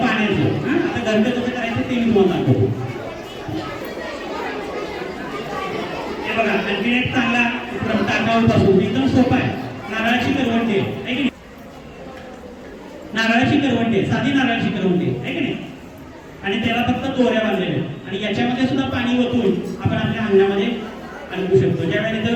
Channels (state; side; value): identical; both; correlation 1.00